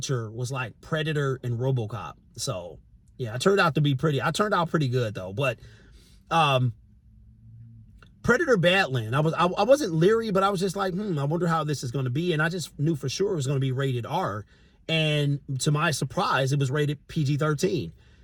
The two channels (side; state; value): both; identical; correlation 1.00